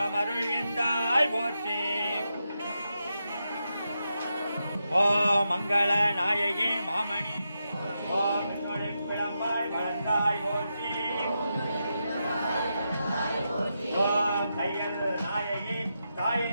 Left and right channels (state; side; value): inverted; both; correlation -0.86